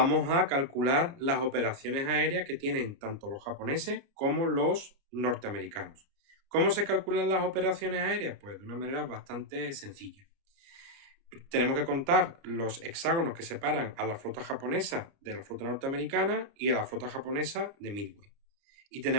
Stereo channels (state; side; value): late; left; 29 ms